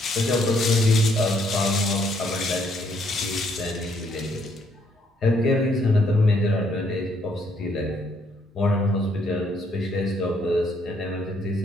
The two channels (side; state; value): both; normal; correlation 0.70